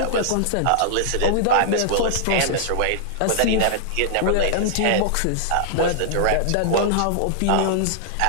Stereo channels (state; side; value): different; both; correlation -0.01